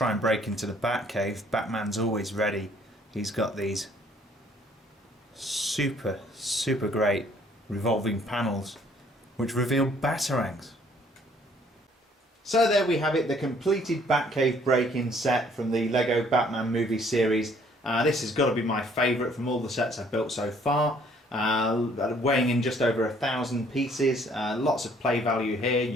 and break into the Batcave, Batman's always ready. He's got these super great revolving panels which reveal batarangs. So there we have it, the completed Batcave Break-in set from the Lego Batman movie series. This has got to be my favourite from all the sets I've built so far. Weighing in just over 1,000 pieces. Lots of play value here.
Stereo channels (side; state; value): both; normal; correlation 0.61